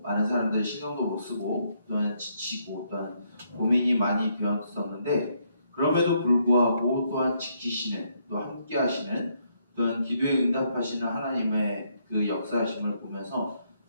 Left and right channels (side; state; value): both; inverted; correlation -0.74